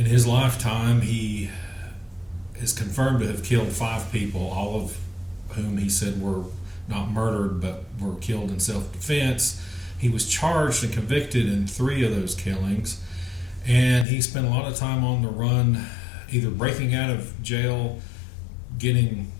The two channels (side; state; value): right; drops out; at 14.1 s